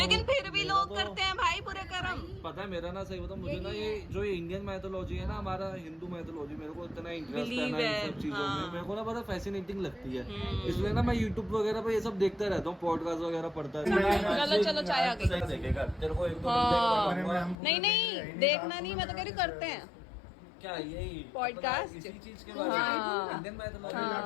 फिर भी लोग करते हैं भाई बुरे कर्म। पता है मेरा ना सही बताऊं, मुझे ना ये जो ये इंडियन मैथोलॉजी है ना, हमारा हिंदू मैथोलॉजी, मेरे को इतना इंटरेस्ट है ना इन सब चीजों में, मेरे को ना बड़ा फैसिनेटिंग लगती है। इसलिए ना मैं यूट्यूब वगैरह पे ये सब देखता रहता हूँ, पॉडकास्ट वगैरह पढ़ता रहता हूँ। चलो चाय आ गई। देखेगा तेरे को एक दो नहीं देखना नहीं, मैं तो कह रही करते हैं क्या यही पॉडकास्ट इसी चीज के बारे में इंडियन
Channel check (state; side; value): drops out; right; at 17.6 s